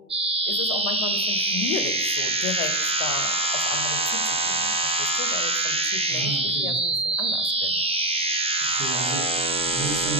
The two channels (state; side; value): normal; both; correlation 0.07